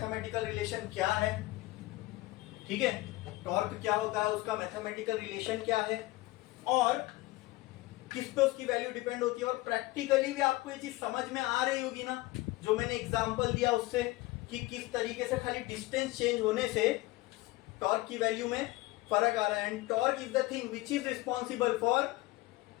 रिलेशन क्या है, ठीक है। टॉर्क क्या होता है, उसका मैथमेटिकल रिलेशन क्या है, और किस पे उसकी वैल्यू डिपेंड होती है, और प्रैक्टिकली भी आपको ये चीज समझ में आ रही होगी ना, जो मैंने एग्जांपल दिया उससे, कि किस तरीके से खाली डिस्टेंस चेंज होने से टॉर्क की वैल्यू में फर्क आ रहा है। And torque is the thing which is responsible for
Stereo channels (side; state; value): right; quieter; 19.9 dB